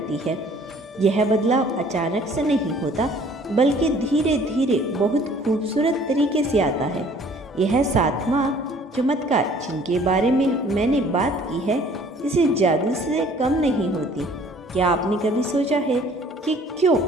है। यह बदलाव अचानक से नहीं होता, बल्कि धीरे धीरे बहुत खूबसूरत तरीके से आता है। यह सातवां चमत्कार जिनके बारे में मैंने बात की है, इसे जादू से कम नहीं होती। क्या आपने कभी सोचा है कि क्यों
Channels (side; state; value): both; normal; correlation 0.55